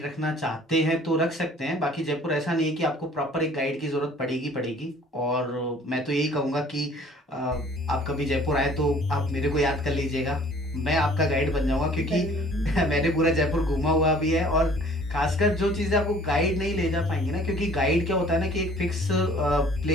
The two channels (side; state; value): both; normal; correlation 0.53